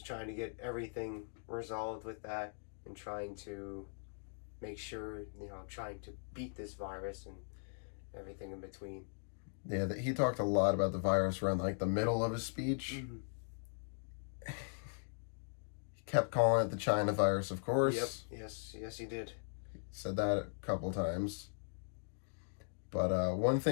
trying to get everything resolved with that and trying to make sure, trying to beat this virus and everything in between. Yeah, he talked a lot about the virus around like the middle of his speech. Mm-hmm. He kept calling it the China virus, of course. Yep. Yes, he did. Said that a couple times. But one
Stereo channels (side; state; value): right; silent; digital silence